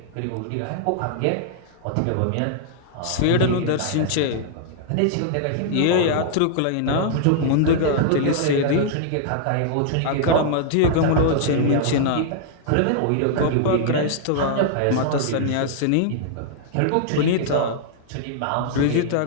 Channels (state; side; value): different; both; correlation -0.01